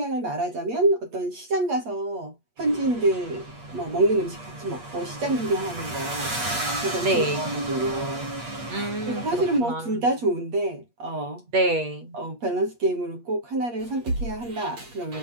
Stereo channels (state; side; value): late; left; 8.4 ms